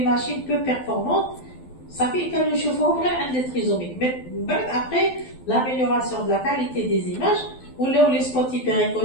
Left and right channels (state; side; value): late; right; 12 ms